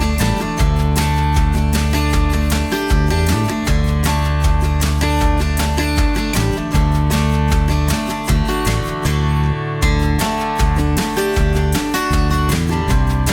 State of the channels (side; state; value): both; identical; correlation 1.00